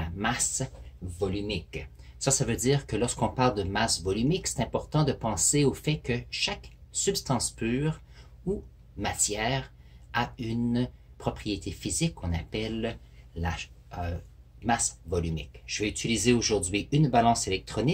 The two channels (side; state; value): both; identical; correlation 1.00